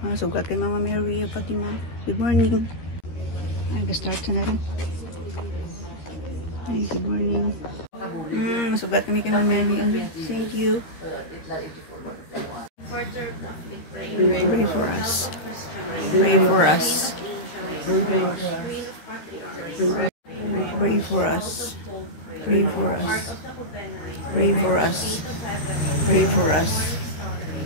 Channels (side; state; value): right; late; 13 ms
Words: Sugat kay Mama Mary, Fatima. Good morning. Nag-start na rin. Hi, good morning. Masugat kami kay Mama Mary. Thank you. Pray for us. Pray for us. Pray for us. Pray for us. Pray for us. Pray for us.